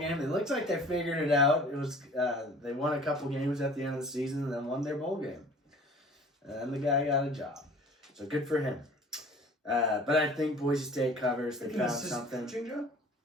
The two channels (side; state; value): both; normal; correlation 0.47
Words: It looks like they figured it out. It was they won a couple games at the end of the season and then won their bowl game. And the guy got a job. So good for him. But I think Boise State covers. They found something. Joe?